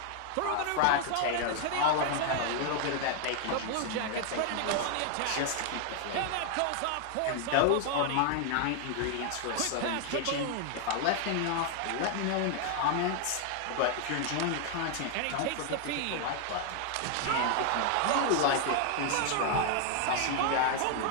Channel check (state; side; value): different; both; correlation 0.00